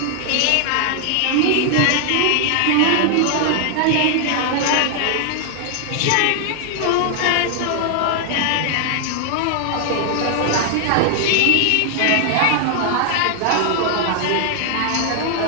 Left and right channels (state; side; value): different; both; correlation 0.00